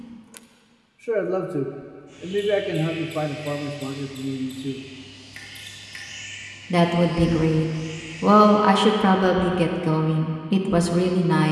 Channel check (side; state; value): both; identical; correlation 1.00